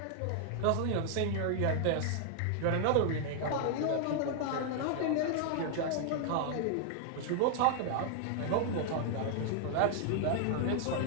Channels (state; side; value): different; both; correlation -0.01